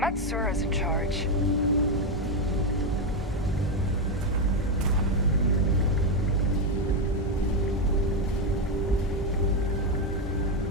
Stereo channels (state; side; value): normal; both; correlation 0.07